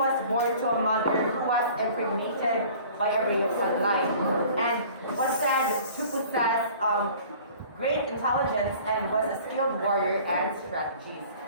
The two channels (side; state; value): both; inverted; correlation -0.48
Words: born to a mother who was impregnated by a ray of sunlight and was said to possess great intelligence and was a skilled warrior and strategist.